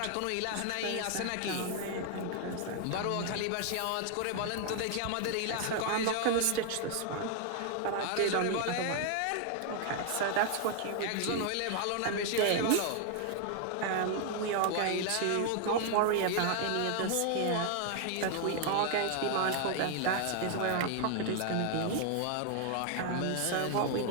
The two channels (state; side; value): different; both; correlation 0.00